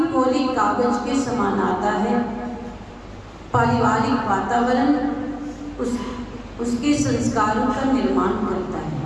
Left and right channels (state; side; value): identical; both; correlation 1.00